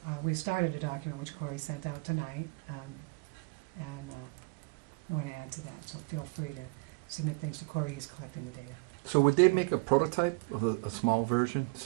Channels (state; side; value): quieter; left; 30.3 dB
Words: we started a document which Corey sent out tonight, and I want to add to that, so feel free to submit things to Corey, he's collecting the data. So would they make a prototype of a small version